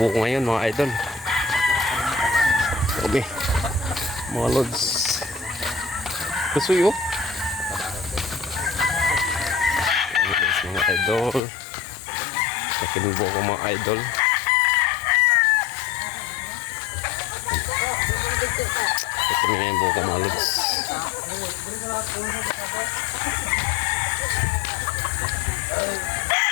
ngayon mga idol. Grabe. Mga lods. Kasuyo. Grabe guys mga idol. Akit kami buko mga idol. Ito na yung buko mga lods.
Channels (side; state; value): right; drops out; at 11.4 s